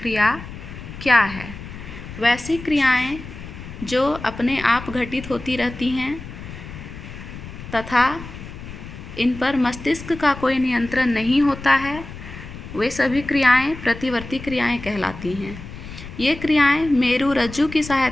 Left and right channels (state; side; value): noise; left; rumble, 12 dB below the sound